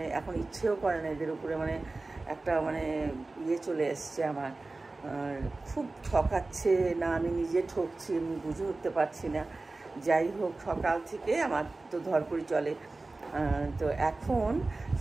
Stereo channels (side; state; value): left; quieter; 3.3 dB